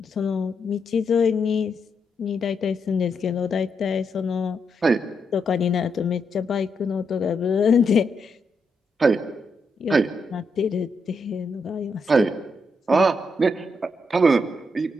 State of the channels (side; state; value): both; normal; correlation 0.81